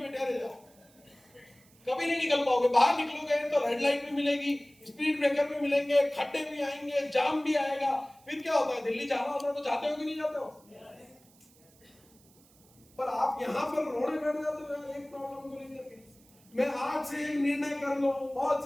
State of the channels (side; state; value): right; noise; hiss, 29 dB below the sound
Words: बैठे रह जाओ, कभी नहीं निकल पाओगे। बाहर निकलोगे तो रेड लाइट भी मिलेगी, स्पीड ब्रेकर भी मिलेंगे, खड्डे भी आएंगे, जाम भी आएगा। फिर क्या होता है, दिल्ली जाना होता है तो जाते हो कि नहीं जाते हो? पर आप यहां पर रोने बैठ जाते हो एक प्रॉब्लम को लेकर के। मैं आज से एक निर्णय कर लो, बहुत